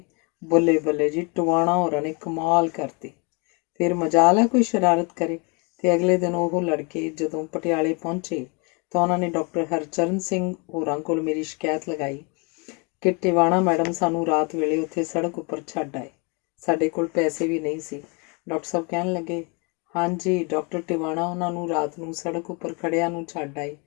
बल्ले बल्ले जी टवाणा होरां ने कमाल करती। फिर मजाल है कोई शरारत करे। ते अगले दिन वो लड़के जदों पटियाले पहुंचे तो उन्होंने डॉक्टर हरचरण सिंह होरां कोल मेरी शिकायत लगाई कि टिवाणा मैडम सानू रात वेले उत्थे सड़क उपर छड्ड आए, साडे कोल पैसे भी नहीं सी। डॉक्टर साहब कहन लगे, हाँ जी डॉक्टर टिवाणा उन्होंने रात नूं सड़क उपर खड़िया नूं छड्ड आए,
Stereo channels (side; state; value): right; quieter; 32.2 dB